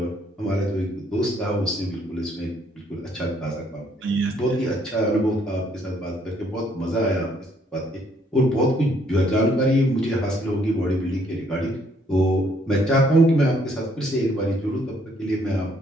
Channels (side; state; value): both; normal; correlation 0.67